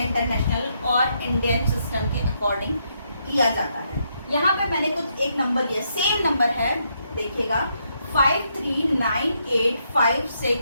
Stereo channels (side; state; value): both; inverted; correlation -0.77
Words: इंटरनेशनल और इंडियन सिस्टम के अकॉर्डिंग किया जाता है। यहाँ पे मैंने कुछ एक नंबर लिया, सेम नंबर है, देखिएगा